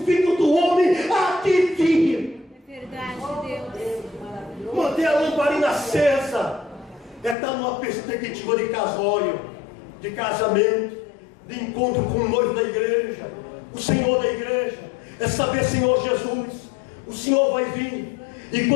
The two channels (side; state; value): right; drops out; at 7.4 s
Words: Filho do Homem há de vir. É verdade, Deus. Manter a lamparina acesa é estar numa perspectiva de casório, de casamento, de encontro com o noivo da igreja, o Senhor da igreja. É saber: Senhor Jesus, o Senhor vai vir, e